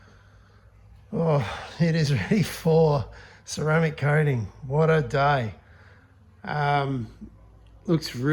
it is ready for ceramic coating. What a day. Looks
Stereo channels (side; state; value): both; identical; correlation 1.00